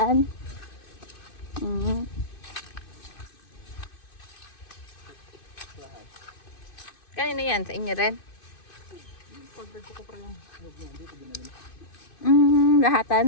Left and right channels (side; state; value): right; late; 2.5 ms